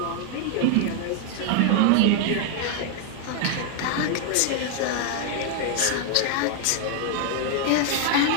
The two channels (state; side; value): different; both; correlation 0.00